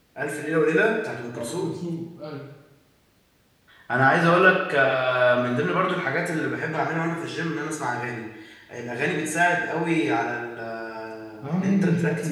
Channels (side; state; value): both; identical; correlation 1.00